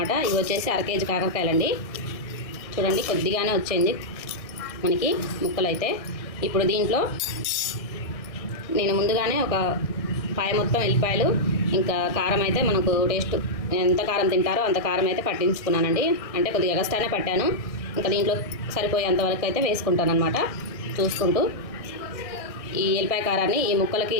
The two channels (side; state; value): right; late; 1.6 ms